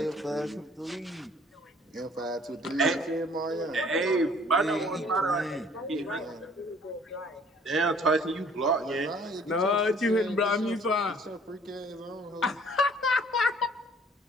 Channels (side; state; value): both; normal; correlation 0.56